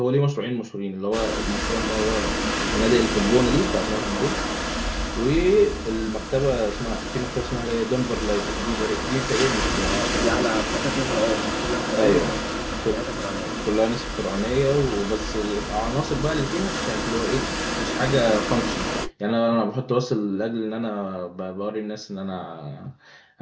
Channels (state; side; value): identical; both; correlation 1.00